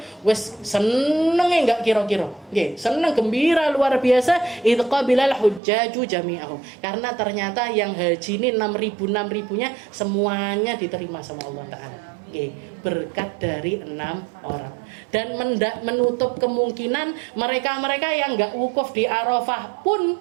wes seneng enggak kira-kira. Seneng gembira luar biasa idqabilal hujjaju jami'ahum. Karena ternyata yang haji ini 6.000-nya semuanya diterima sama Allah Ta'ala. Berkat dari 6 orang. Dan menutup kemungkinan mereka-mereka yang enggak wukuf di Arafah pun,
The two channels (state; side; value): drops out; left; at 5.6 s